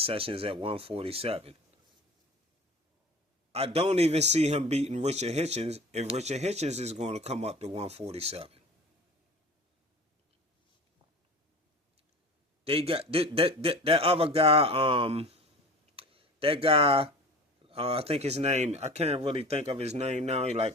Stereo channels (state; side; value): normal; both; correlation 0.38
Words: sessions at 147. I don't even see him beating Richard Hitchens if Richard Hitchens is going to come up to 147. They got that other guy, that guy, I think his name, I can't really think of his name now.